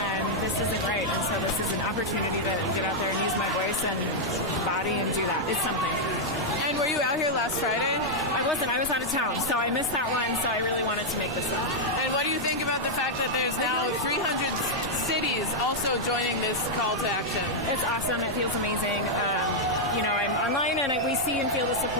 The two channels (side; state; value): both; normal; correlation -0.03